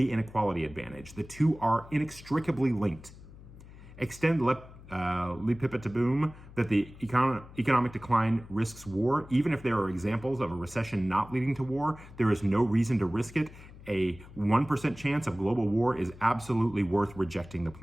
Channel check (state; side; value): noise; left; hum, 18 dB below the sound